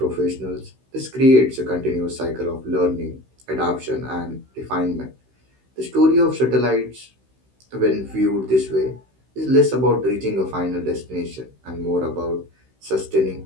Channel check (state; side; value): late; left; 16 ms